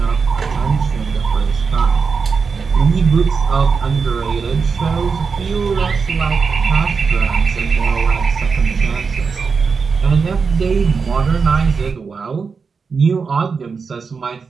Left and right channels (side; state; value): left; quieter; 5.2 dB